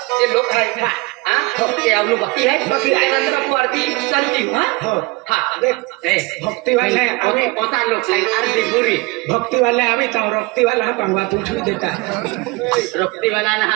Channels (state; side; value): quieter; left; 24.6 dB